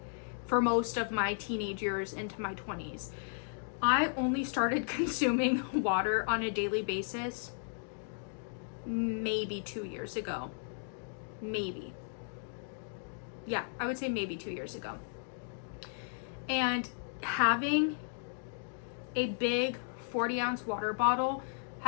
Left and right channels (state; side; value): silent; right; digital silence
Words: for most of my teenage years into my 20s. I only started consuming water on a daily basis maybe 2 years ago. Maybe. Yeah, I would say maybe 2 years ago. And having a big 40-ounce water bottle